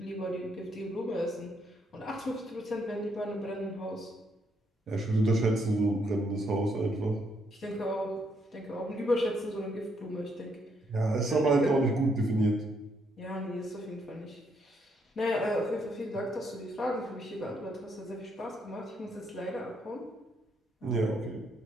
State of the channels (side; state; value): both; normal; correlation 0.74